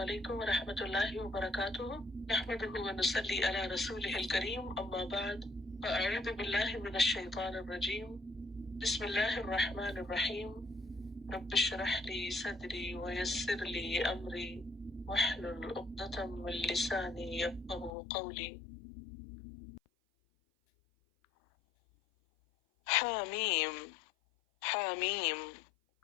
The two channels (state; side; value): drops out; right; at 17.9 s